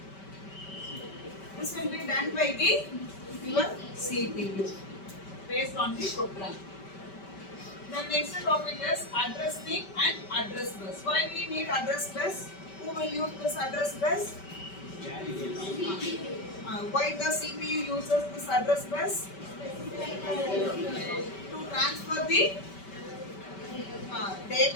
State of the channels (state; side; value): late; right; 5.2 ms